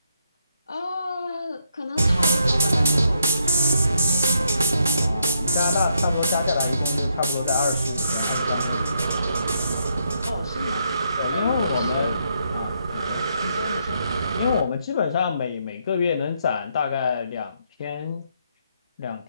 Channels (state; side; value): inverted; both; correlation -0.76